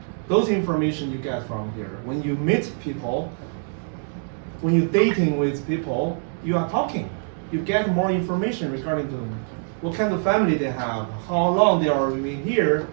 those information you get from here. When you meet people, when you're dating with people, you are talking. You get more information regarding them. What kind of family they have, how long they are living here,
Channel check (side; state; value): left; silent; digital silence